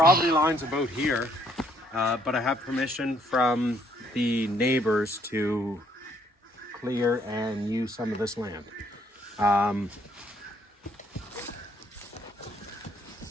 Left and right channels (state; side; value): normal; both; correlation 0.67